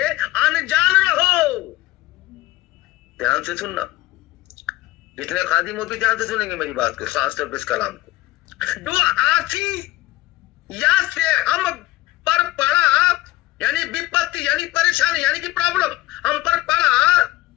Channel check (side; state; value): right; quieter; 17.3 dB